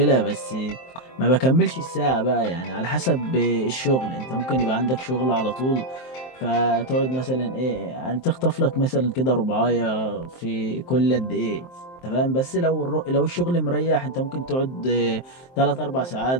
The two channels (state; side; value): late; right; 23 ms